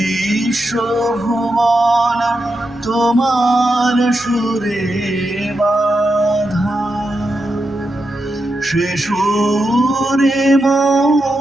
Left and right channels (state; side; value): normal; both; correlation 0.87